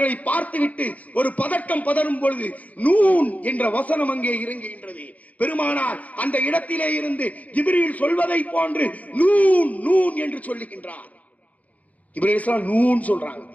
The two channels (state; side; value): late; right; 0.073 ms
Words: பார்த்துவிட்டு ஒரு பதட்டம் பதறும் பொழுது நூன் என்ற வசனம் அங்கே இறங்குகின்றது. பெருமானார் அந்த இடத்திலே இருந்து ஜிப்ரீல் சொல்வதை போன்று நூன் நூன் என்று சொல்லுகின்றார். ஜிப்ரீல் அலைஹிஸ்ஸலாம் நூன் சொல்றாங்க,